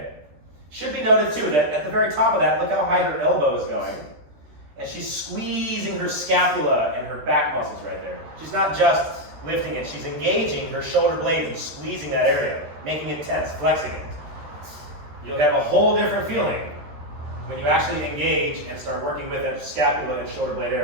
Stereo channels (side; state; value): left; late; 13 ms